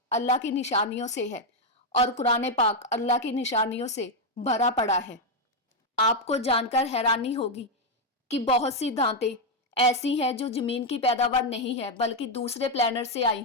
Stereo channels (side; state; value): both; normal; correlation 0.02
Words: अल्लाह की निशानियों से है और कुरान पाक अल्लाह की निशानियों से भरा पड़ा है। आपको जानकर हैरानी होगी कि बहुत सी धातें ऐसी हैं जो जमीन की पैदावार नहीं है बल्कि दूसरे प्लैनेट से आई